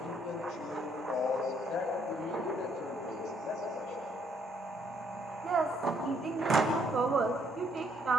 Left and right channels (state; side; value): normal; both; correlation 0.69